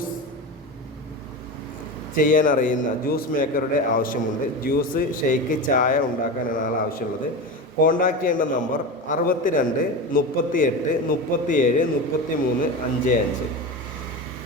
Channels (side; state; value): both; normal; correlation 0.23